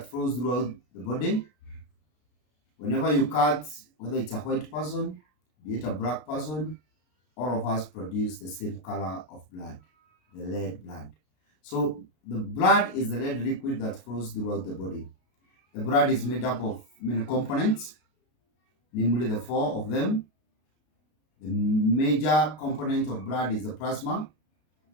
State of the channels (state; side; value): late; right; 33 ms